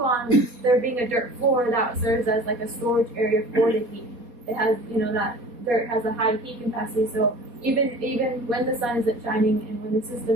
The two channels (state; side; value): late; left; 4.2 ms